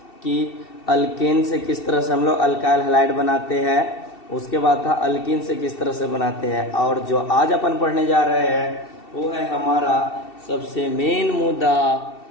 कि अल्केन से किस तरह से हम लोग अल्काइल हैलाइड बनाते हैं, उसके बाद था अल्कीन से किस तरह से बनाते हैं, और जो आज अपन पढ़ने जा रहे हैं वो है हमारा सबसे मेन मुद्दा।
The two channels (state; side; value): late; right; 2.7 ms